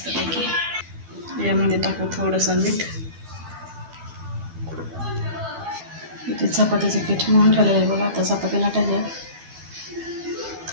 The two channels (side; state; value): left; late; 12 ms